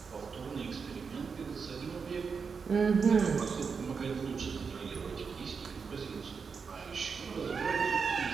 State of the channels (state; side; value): quieter; left; 5.6 dB